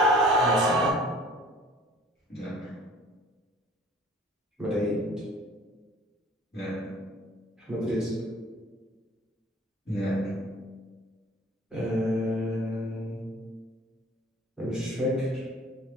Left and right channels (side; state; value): both; normal; correlation 0.50